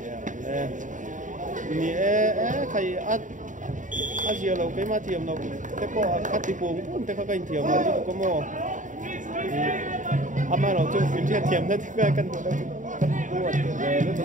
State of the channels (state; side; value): late; left; 0.37 ms